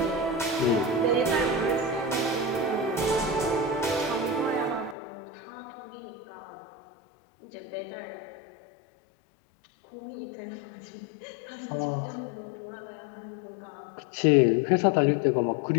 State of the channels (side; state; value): right; drops out; at 5.0 s